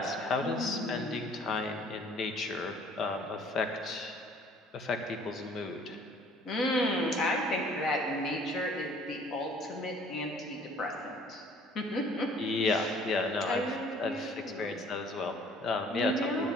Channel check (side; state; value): both; normal; correlation 0.55